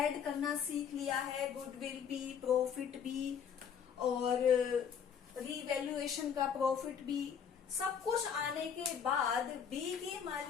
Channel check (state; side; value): quieter; right; 7.6 dB